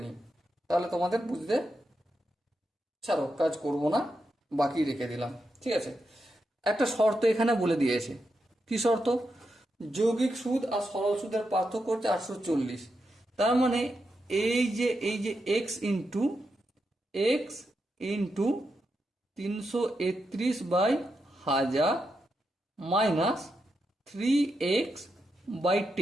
নিই, তাহলে তোমাদের বুঝতে, ছাড়ো কাজ করব না, বাকি রেখে দিলাম। ঠিক আছে। একটা শর্ত এখানে বলে দিয়েছে। কি শর্ত? যৌগিক সুদ আর সরল সুদের পার্থক্য হচ্ছে 840। তার মানে এই যে এক্স ইন্টু 331/1000 মাইনাস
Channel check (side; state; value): both; normal; correlation 0.85